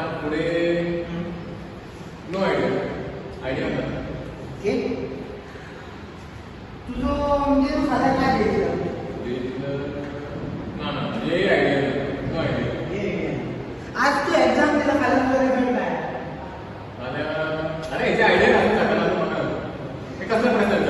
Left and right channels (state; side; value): identical; both; correlation 1.00